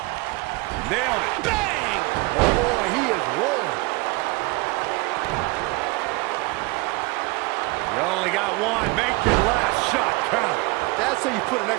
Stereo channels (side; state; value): left; quieter; 24.8 dB